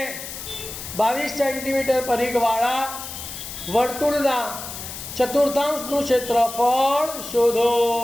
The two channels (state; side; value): noise; left; hiss, 9 dB below the sound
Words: 22 centimetre પરિઘવાળા વર્તુળના ચતુર્થાંશનું ક્ષેત્રફળ શોધો।